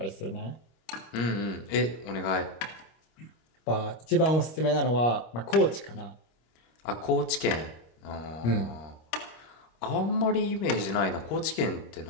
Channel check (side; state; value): right; late; 25 ms